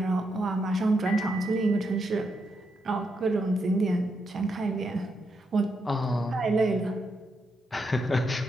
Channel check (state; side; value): normal; both; correlation 0.82